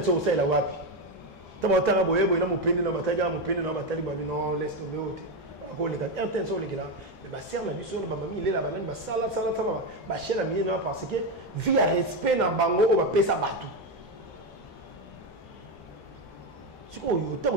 au la wapi tama tanga boye na mupende na bataga mupende na batali ba non laisse tomber ote ko les gars RTNC les gars mais ba serre la biso ba mami il est là ba ba sala ba chela mi na parce que via respect na bango o ba pesa batu siko yo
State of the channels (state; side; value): normal; both; correlation 0.10